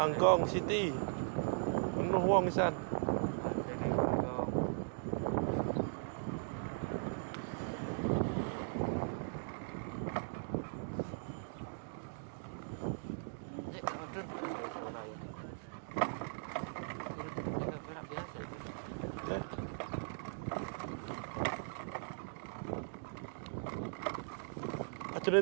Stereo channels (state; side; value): silent; left; digital silence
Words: City. Penuh wong isan.